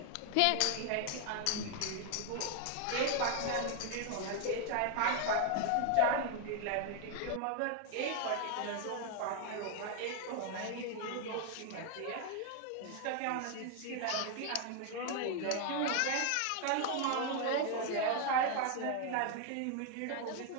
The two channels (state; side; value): different; both; correlation 0.01